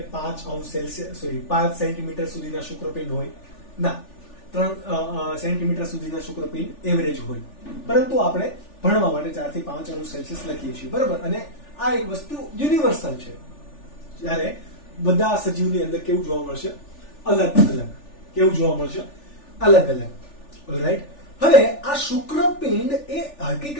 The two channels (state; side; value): late; right; 3.4 ms